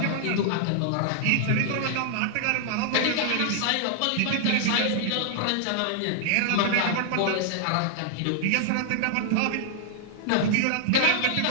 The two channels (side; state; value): both; different; correlation -0.01